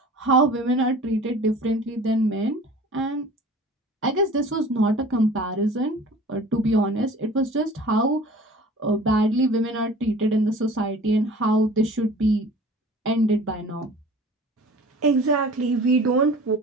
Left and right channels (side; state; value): both; normal; correlation 0.43